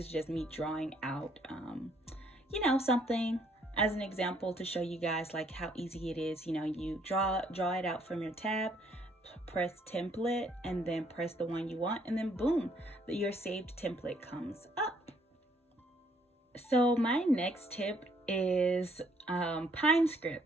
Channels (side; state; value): both; normal; correlation 0.67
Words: just me drawing out, you know, something as an example to show you guys like how easy it is. You know, you draw it out from your tab, press template, and then press the one you want, and then boom, your saved template comes up. So my next tip is Pine